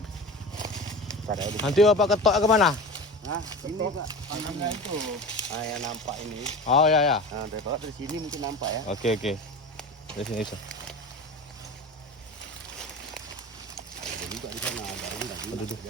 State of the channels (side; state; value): both; normal; correlation 0.31